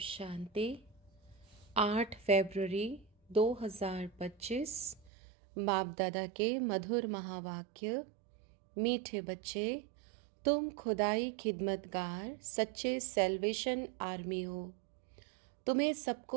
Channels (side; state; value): left; drops out; at 5.1 s